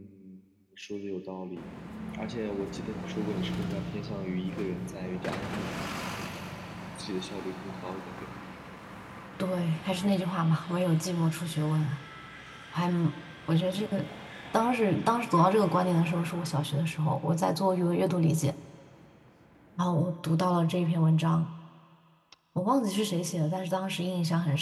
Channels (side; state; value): both; identical; correlation 1.00